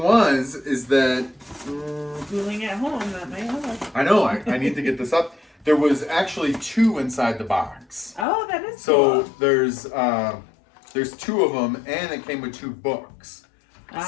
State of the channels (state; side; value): drops out; right; at 8.2 s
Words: is that schooling at home, that might help. I know, I need to get this up. There was actually 2 inside the box. Oh, that is cool. So there's 2 of them, and it came with 2 books.